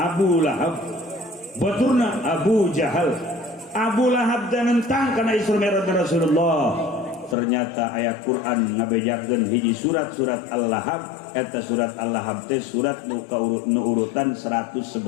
Lahab, baturna Abu Jahal. Abu Lahab dan nentang karena Isra Mi'rajnya Rasulullah. Ternyata ayat Quran ngabejakeun hiji surat-surat Al-Lahab. Eta surat Al-Lahab teh surat nu urutan 111.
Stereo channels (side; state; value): right; drops out; at 7.4 s